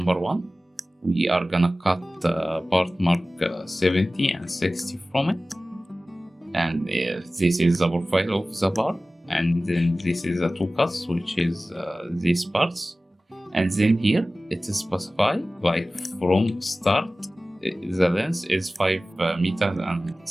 1. We are gonna cut part mark 70 and 60 from it. And this is the profile of the bar. And then this is the 2 cuts, which is these parts. And then here it is specified like from start, the length is 5 meters and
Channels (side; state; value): both; normal; correlation 0.97